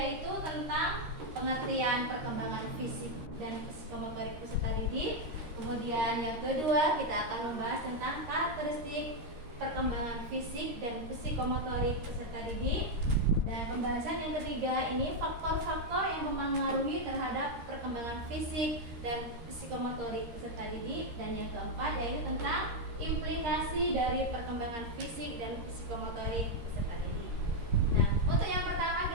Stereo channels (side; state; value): left; late; 13 ms